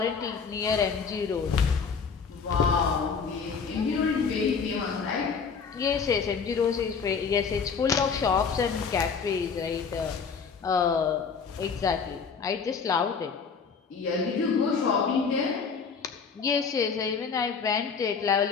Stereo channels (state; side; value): quieter; right; 5.7 dB